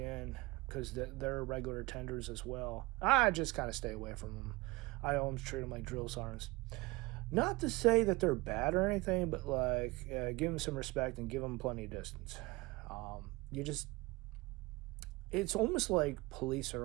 because they're regular attenders as well. I just kind of stay away from them. I always treat them like drill sergeants. Not to say that they're bad or anything, but like give them some respect and give them plenty of distance. It's almost like police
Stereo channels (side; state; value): left; quieter; 22.3 dB